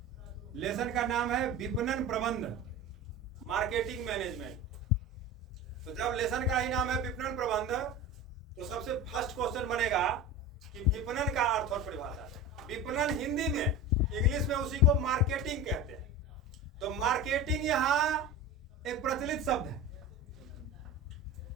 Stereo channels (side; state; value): both; normal; correlation 0.30